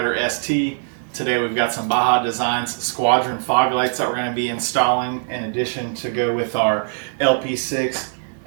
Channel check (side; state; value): left; silent; 57 dB below the other